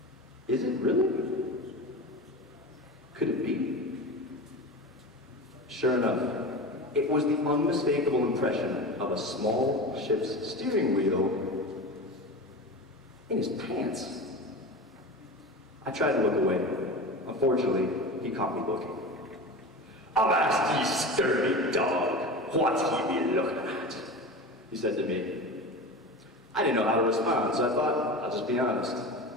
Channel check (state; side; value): normal; both; correlation 0.29